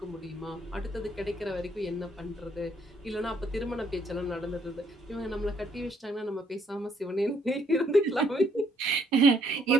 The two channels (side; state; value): both; normal; correlation 0.68